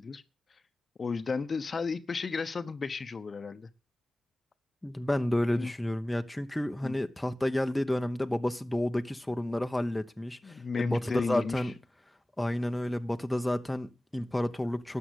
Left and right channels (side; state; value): both; normal; correlation 0.97